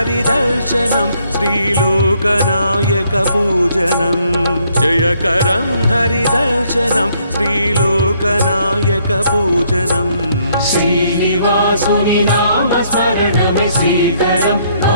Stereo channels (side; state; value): both; inverted; correlation -0.68